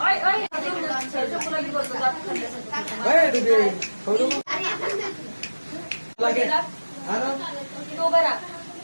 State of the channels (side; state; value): both; inverted; correlation -1.00